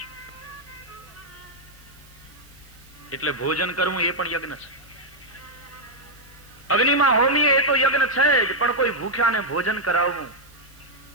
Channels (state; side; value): noise; right; hiss, 26 dB below the sound